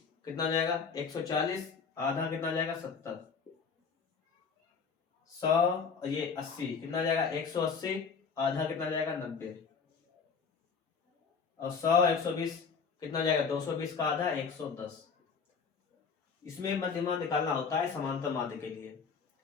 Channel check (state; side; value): quieter; right; 5.7 dB